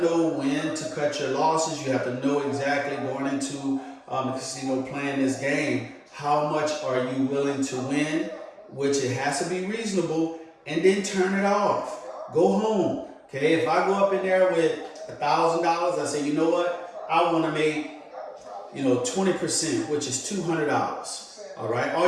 know when to cut your losses. You have to know exactly going into the casino playing this game, how much are you willing to win, which it has to be reasonable, and then turn it off. Go home, okay? If I go up in there with $1,000, I say, you know what? I want to make, 20%, which is $200. All right?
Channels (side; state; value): both; identical; correlation 1.00